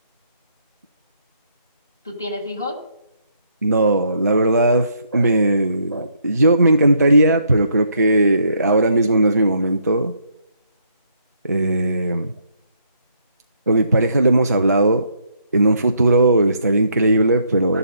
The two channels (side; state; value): both; inverted; correlation -0.71